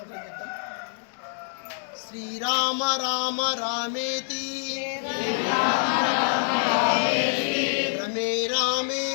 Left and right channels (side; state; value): right; silent; digital silence